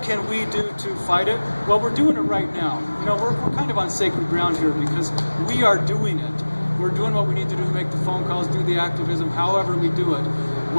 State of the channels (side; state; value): both; inverted; correlation -1.00